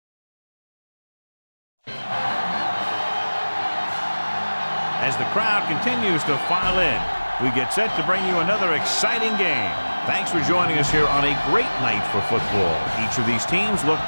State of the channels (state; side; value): inverted; both; correlation -1.00